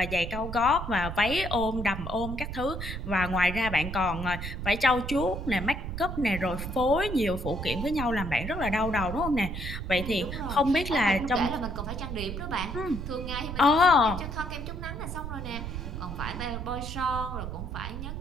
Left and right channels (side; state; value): right; noise; rumble, 6 dB below the sound